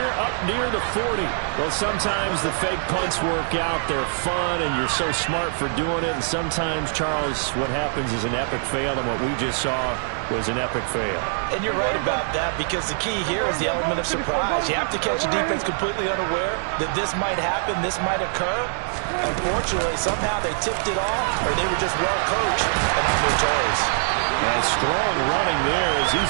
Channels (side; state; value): left; silent; digital silence